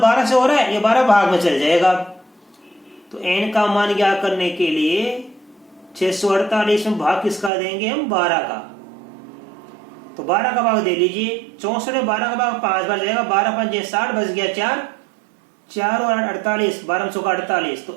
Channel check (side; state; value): left; drops out; at 7.5 s